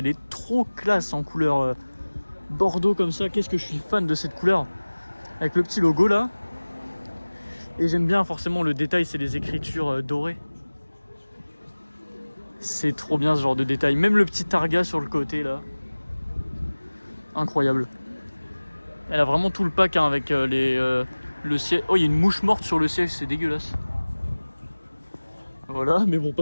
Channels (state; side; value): inverted; both; correlation -1.00